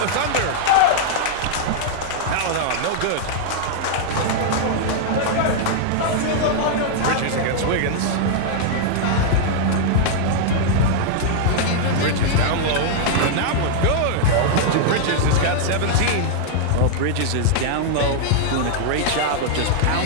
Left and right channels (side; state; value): both; different; correlation -0.01